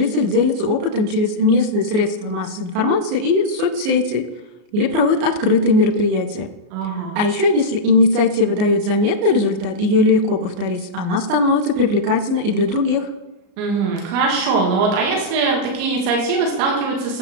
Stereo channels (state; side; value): late; left; 33 ms